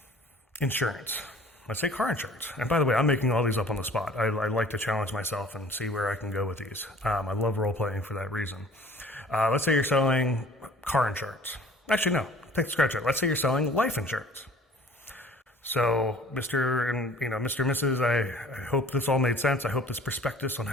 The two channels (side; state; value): both; normal; correlation 0.50